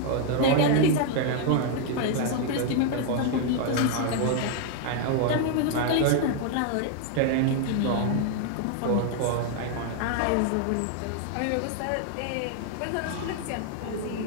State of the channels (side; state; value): both; different; correlation 0.00